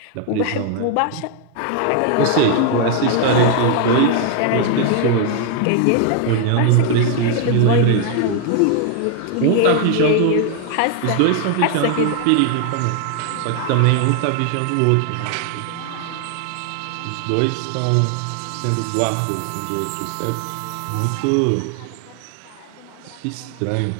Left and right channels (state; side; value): different; both; correlation 0.00